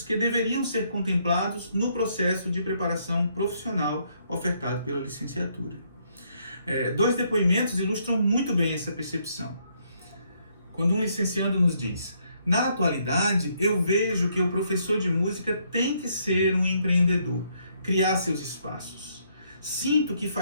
que deveriam ser contemplados no processo de preparação profissional ofertado pela licenciatura. Dois depoimentos ilustram muito bem essa percepção. Quando um licenciando nos diz: na atualidade, eu vejo que o professor de música tem que ser um empreendedor, criar seus espaços. Sinto que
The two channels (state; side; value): inverted; both; correlation -0.72